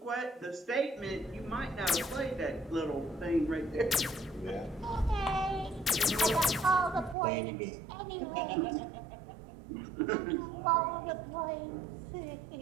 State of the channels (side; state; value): left; drops out; at 7.2 s